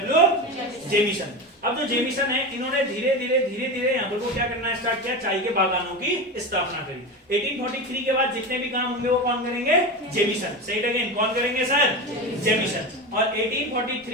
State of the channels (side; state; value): both; normal; correlation 0.22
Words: Jameson. अब जो जेमिसन है इन्होंने धीरे धीरे यहाँ पर को क्या करना स्टार्ट किया, चाय के बागानों की स्थापना करी। 1843 के बाद जितने भी काम होंगे वो कौन करेंगे? जेमिसन। से इट अगेन, कौन करेंगे सर? जेमिसन। और